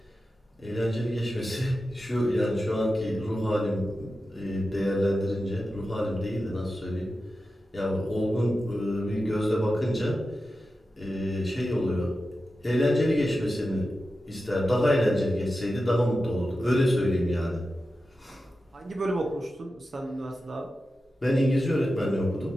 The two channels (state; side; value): normal; both; correlation 0.92